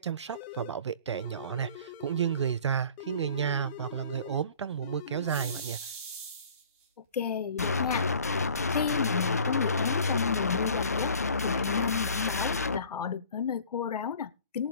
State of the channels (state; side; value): inverted; both; correlation -0.47